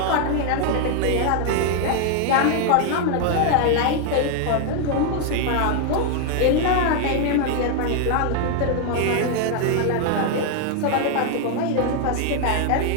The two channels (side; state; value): both; different; correlation 0.00